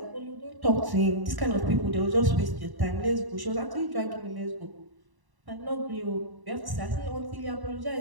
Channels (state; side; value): late; left; 1.1 ms